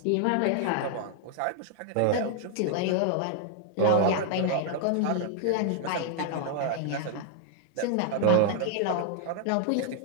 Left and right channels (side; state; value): both; different; correlation 0.00